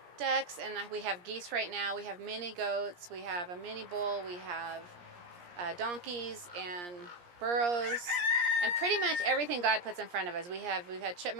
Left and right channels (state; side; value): late; left; 17 ms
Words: ducks, and we have geese right now. We have mini goats, we have a mini bull, we have donkeys and burros, and pretty much everything God puts in front of us. We've had